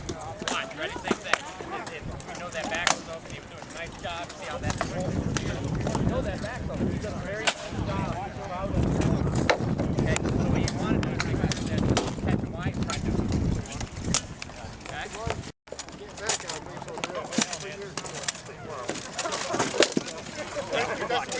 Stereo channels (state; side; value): identical; both; correlation 1.00